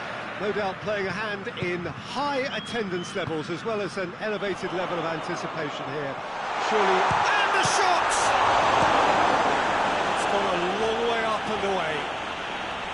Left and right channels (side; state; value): both; identical; correlation 1.00